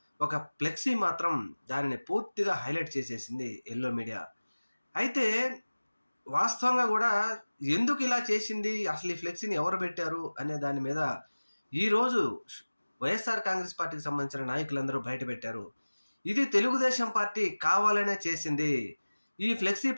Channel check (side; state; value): both; inverted; correlation -1.00